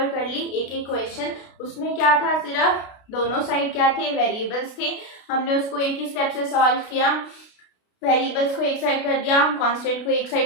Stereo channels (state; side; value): late; right; 32 ms